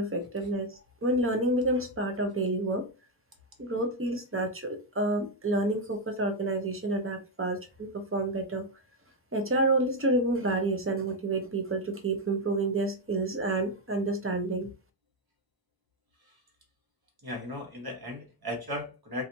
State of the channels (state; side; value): normal; both; correlation 0.06